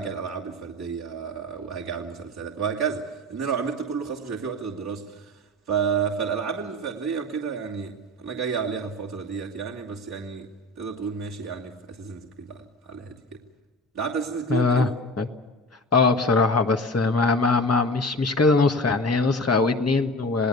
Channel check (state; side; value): normal; both; correlation 0.34